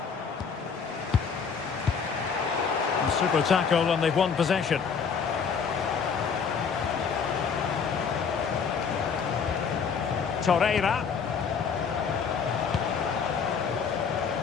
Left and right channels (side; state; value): right; quieter; 6.1 dB